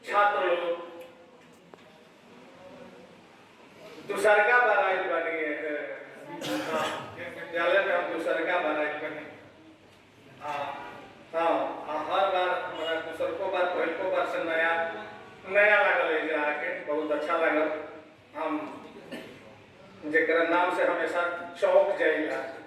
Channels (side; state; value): both; identical; correlation 1.00